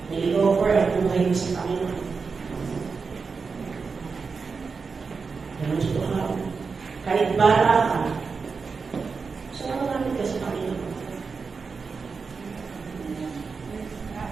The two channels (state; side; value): quieter; left; 4.9 dB